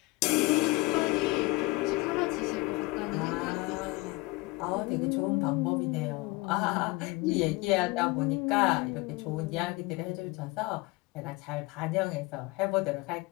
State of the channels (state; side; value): quieter; right; 22.8 dB